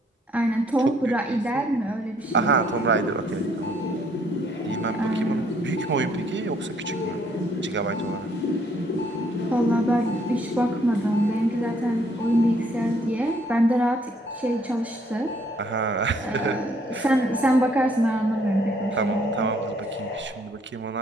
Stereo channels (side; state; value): both; normal; correlation 0.66